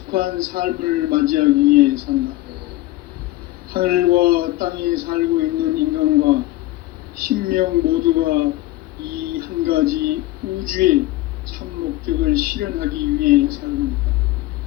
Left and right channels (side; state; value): right; quieter; 17.4 dB